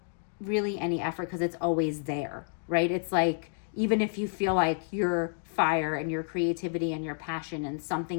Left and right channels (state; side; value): silent; right; digital silence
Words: really any effort because it's always there, right? It's like, even if you feel like your fire and your creativity and your passion and